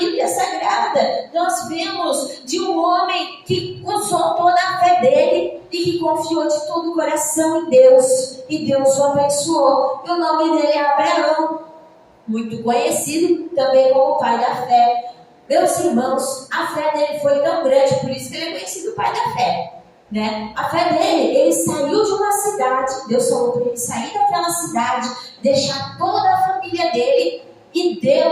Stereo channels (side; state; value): both; identical; correlation 1.00